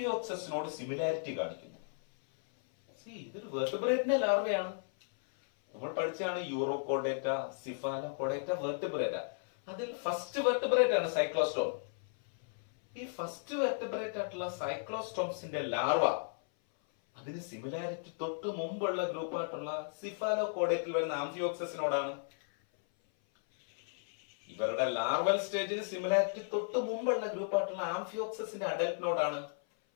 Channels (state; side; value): silent; right; 55 dB below the other